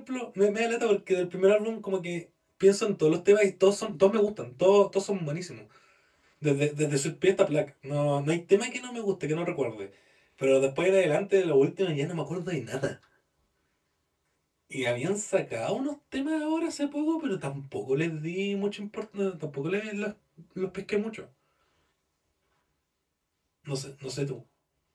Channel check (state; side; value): identical; both; correlation 1.00